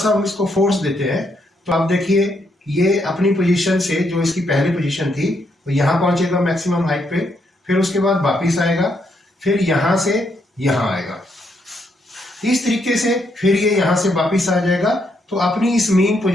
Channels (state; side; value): normal; both; correlation 0.76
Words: हम इसको फोर्स देते हैं तो आप देखिए ये अपनी पोजीशन से, जो इसकी पहली पोजीशन थी, तो यहाँ पहुंचेगा मैक्सिमम हाइट पे, फिर उसके बाद वापिस आएगा, फिर यहां से यहां आएगा, इस तरीके से फिर ये यहां से वापिस आ जाएगा। तो अपनी इस मेन